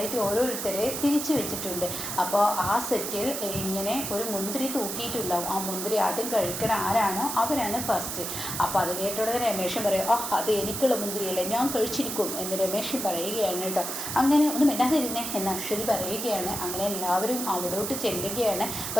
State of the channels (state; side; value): noise; right; hiss, 4 dB below the sound